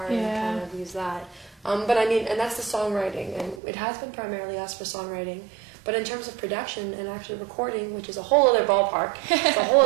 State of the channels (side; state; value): left; drops out; at 3.6 s